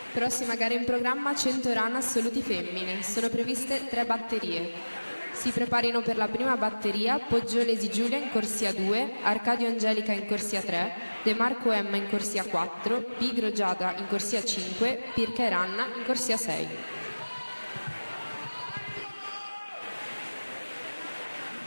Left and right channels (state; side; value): inverted; both; correlation -1.00